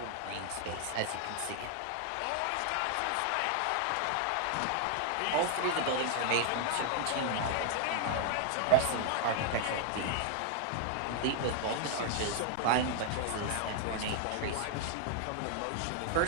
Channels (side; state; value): both; different; correlation 0.00